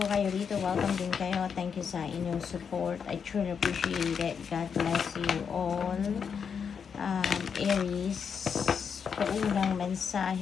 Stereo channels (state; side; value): quieter; right; 6.7 dB